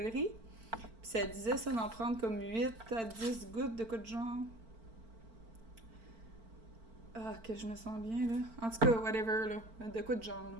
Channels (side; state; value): left; late; 4.4 ms